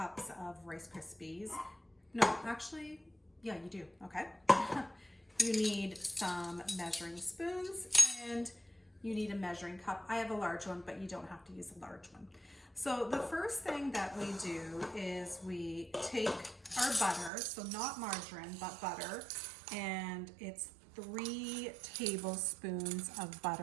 of Rice Krispies. No, actually, yeah, you do, okay. You need some measuring spoons and you need a measuring cup. I have a large one, but you don't have to use a large one. So the first thing that we do is we take our butter, so not margarine, but butter, and it's 3 tablespoons of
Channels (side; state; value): left; drops out; at 17.3 s